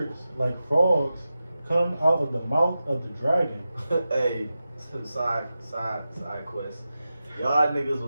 like frogs come out of the mouth of the dragon. Hey, side quest. Y'all niggas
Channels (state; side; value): inverted; both; correlation -0.92